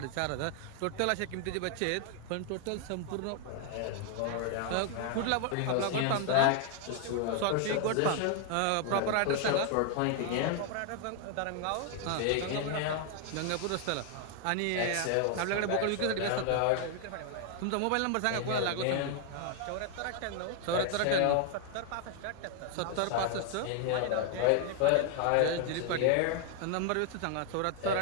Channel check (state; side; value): different; both; correlation 0.00